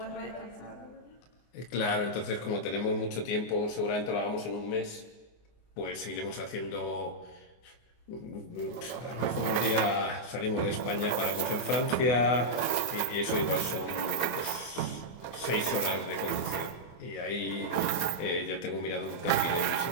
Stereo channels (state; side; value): late; right; 24 ms